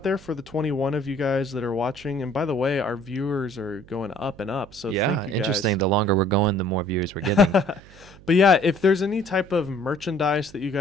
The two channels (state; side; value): noise; right; hum, 23 dB below the sound